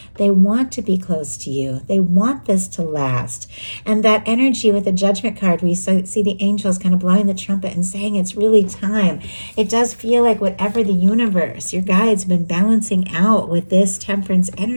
They want to be close to you. They want this to last. And that energy with the Judgment card, we see the angels kind of blowing the trumpet and saying it's really time. It does feel like whatever the universe, your guides, been balancing out with this Temperance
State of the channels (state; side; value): inverted; both; correlation -1.00